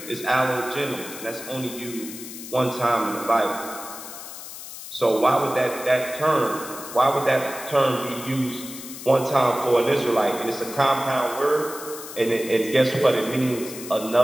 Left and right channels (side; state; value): left; noise; hiss, 12 dB below the sound